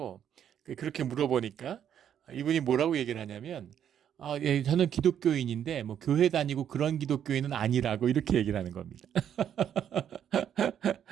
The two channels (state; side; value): quieter; left; 9.4 dB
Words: 그렇게 물어보니까 이분이 뭐라고 얘기를 하냐면, 저는 기독교인인데 뭐 교회 다니고 그런 기독교인은 아니라고 이렇게 얘기를 하는 겁니다.